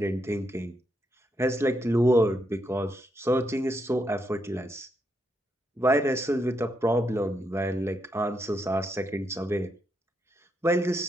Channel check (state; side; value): normal; both; correlation 0.80